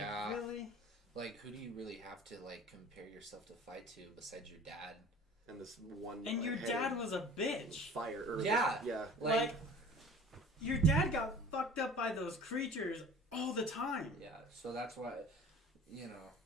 Like, really? Like, who do you really have to, like, compare yourself to fight to besides your dad? And this one... And your dad was a bitch. Fire. Or Yeah. Yeah. Like, your dad got fucked up by those creatures all the time. Yeah, so that's why, you know,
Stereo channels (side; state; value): both; normal; correlation 0.44